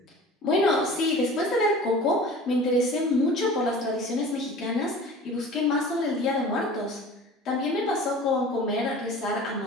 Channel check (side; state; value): both; normal; correlation 0.41